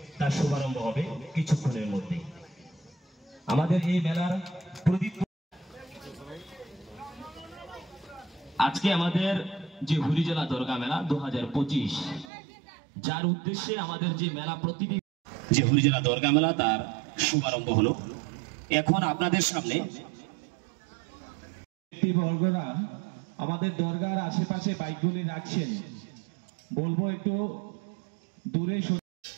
তার শুভারম্ভ হবে কিছুক্ষণের মধ্যে। আমাদের এই মেলার প্রদীপ আজকে আমাদের যে হুরিজলা দরগা মেলা 2025 যার উদ্দেশ্যে আমাদের যে মেলা প্রতিটি যে হুরিজলা দরগা মেলা তার শুভারম্ভ হলো। এখন আপনাদের সামনে বর্গরা আমাদের দরগার আশেপাশে বাইকগুলি রাখছেন, বলবো একটু দূরে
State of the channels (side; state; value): left; drops out; at 12.2 s